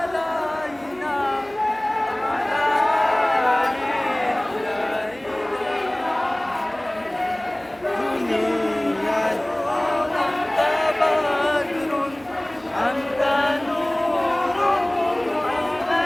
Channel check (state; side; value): noise; right; hum, 27 dB below the sound